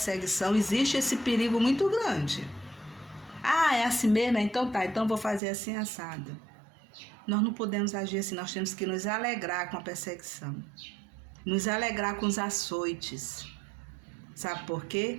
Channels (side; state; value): left; drops out; at 5.4 s